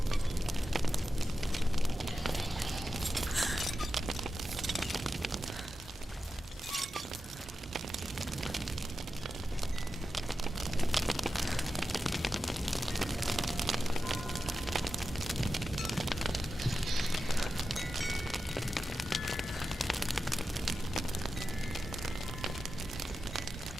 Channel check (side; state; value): both; normal; correlation 0.92